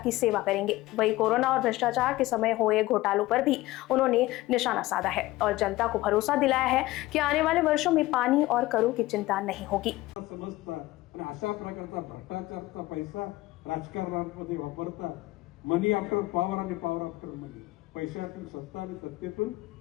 सेवा करेंगे। वही कोरोना और भ्रष्टाचार के समय हुए घोटालों पर भी उन्होंने निशाना साधा है और जनता को भरोसा दिलाया है कि आने वाले वर्षों में पानी और करों की चिंता नहीं होगी। अशा प्रकारचा भ्रष्टाचारचा पैसा राजकारणामध्ये वापरता मनी आफ्टर पॉवर आणि पॉवर आफ्टर मनी, पैशातून सत्ता आणि सत्तेतून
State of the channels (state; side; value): quieter; right; 18.3 dB